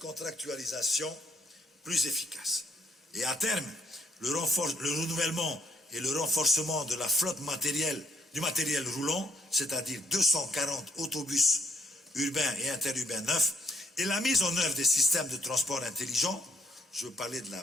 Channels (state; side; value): normal; both; correlation 0.68